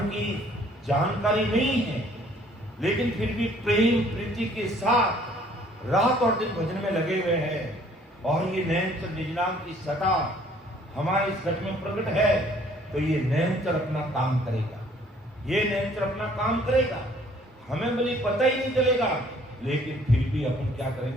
की जानकारी नहीं है लेकिन फिर भी प्रेम प्रीति के साथ रात और दिन भजन में लगे हुए हैं और ये नैनचर निज नाम की सता हमारे इस घट में प्रकट है, तो ये नैनचर अपना काम करेगा, ये नैनचर अपना काम करेगा, हमें भले पता ही नहीं चलेगा, लेकिन फिर भी अपन क्या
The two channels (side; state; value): both; normal; correlation 0.59